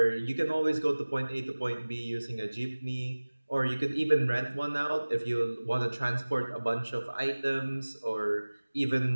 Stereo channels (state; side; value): inverted; both; correlation -1.00